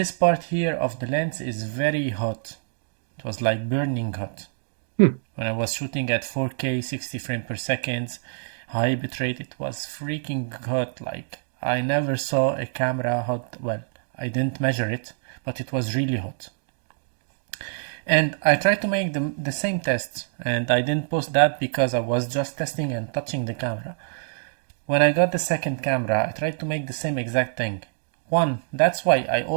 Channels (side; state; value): left; silent; digital silence